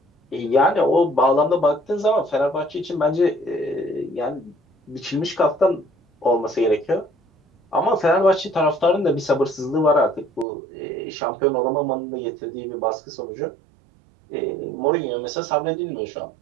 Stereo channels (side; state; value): left; drops out; at 10.5 s